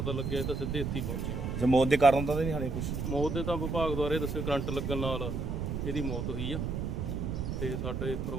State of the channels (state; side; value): noise; right; rumble, 2 dB below the sound